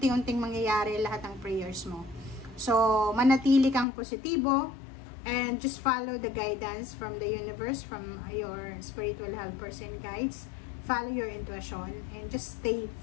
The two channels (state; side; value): drops out; right; at 3.9 s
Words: mangyayari lahat ng prayers mo. So, manatili kang positibo and just follow the guidance from the universe, from your spiritual helpers and guides. Follow your intuition and just stay